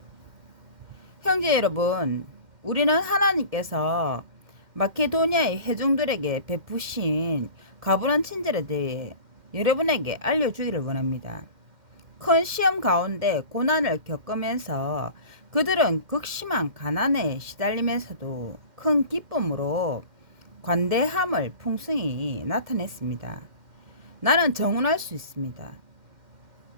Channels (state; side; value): late; left; 2.1 ms